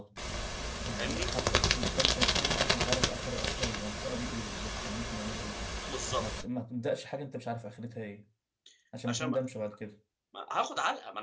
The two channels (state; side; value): identical; both; correlation 1.00